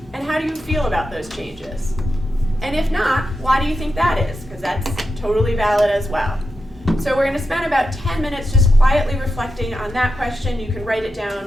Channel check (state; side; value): normal; both; correlation 0.88